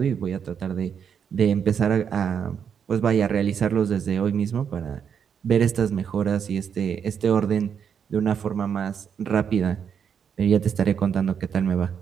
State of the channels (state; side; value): quieter; left; 7.5 dB